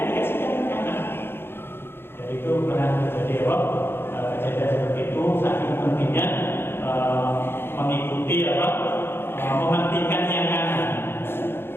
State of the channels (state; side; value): late; right; 0.11 ms